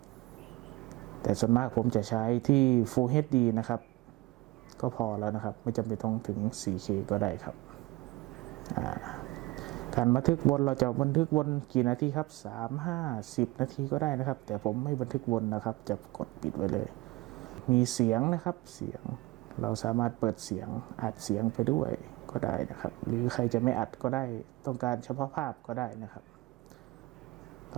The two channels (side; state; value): left; quieter; 20.3 dB